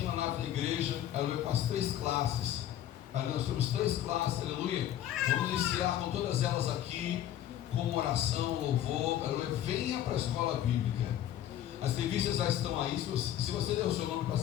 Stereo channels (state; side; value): quieter; right; 11.7 dB